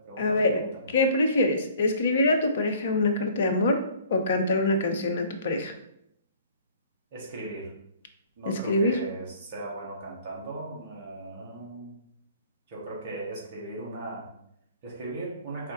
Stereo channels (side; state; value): both; inverted; correlation -0.53